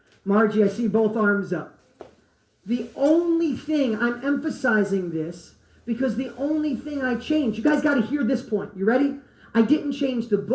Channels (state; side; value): identical; both; correlation 1.00